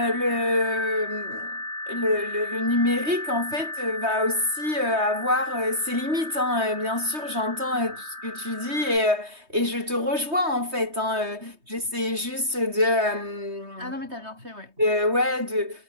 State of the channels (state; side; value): late; left; 3.2 ms